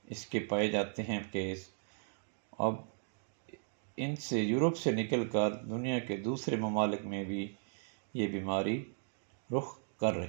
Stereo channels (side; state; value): left; silent; digital silence